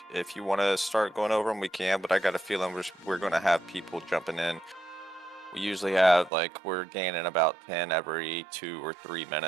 if you want to start going over them, we can. But I got a feeling we're going to have people jumping in. We usually have like we're gaining about 10 every 2 or 3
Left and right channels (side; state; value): left; drops out; at 6.3 s